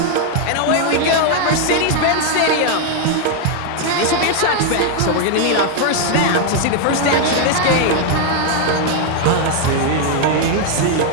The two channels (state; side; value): different; both; correlation 0.01